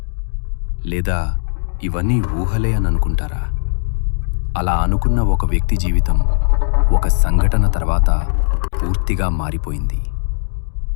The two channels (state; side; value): silent; right; 63 dB below the other